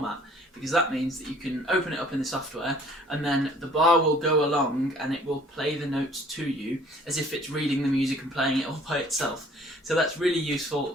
because that means that you can open it up in the software, and then the bar will go along and it will play the notes to you as if it's reading the music and playing it all by itself. So that's really useful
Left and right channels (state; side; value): normal; both; correlation 0.55